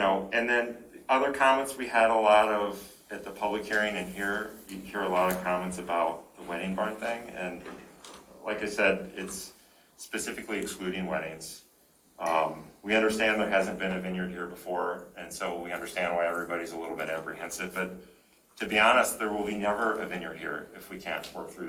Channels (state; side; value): identical; both; correlation 1.00